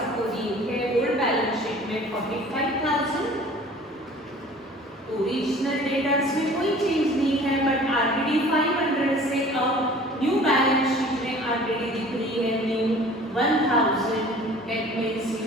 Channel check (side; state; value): both; normal; correlation 0.47